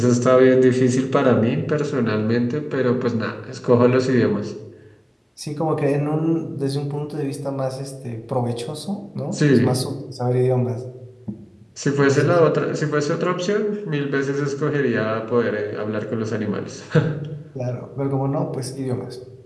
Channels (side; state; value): both; identical; correlation 1.00